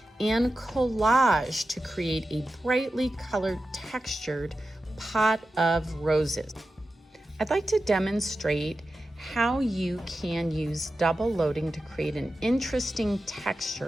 and collage to create a brightly colored textured pot of roses. I'd like to demonstrate how you can use double loading to create an interesting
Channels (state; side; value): normal; both; correlation 0.92